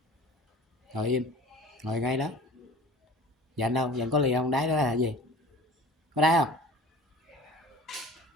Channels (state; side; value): normal; both; correlation 0.42